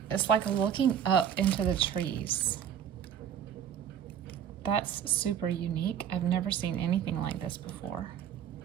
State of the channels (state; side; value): quieter; left; 9.0 dB